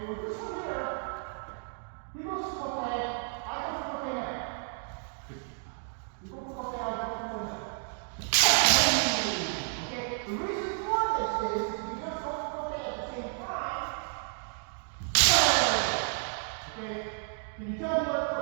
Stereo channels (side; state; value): left; silent; 57 dB below the other